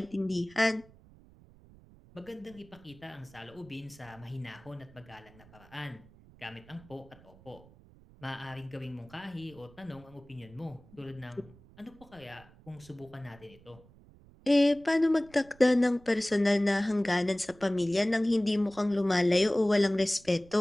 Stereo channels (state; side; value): noise; right; rumble, 24 dB below the sound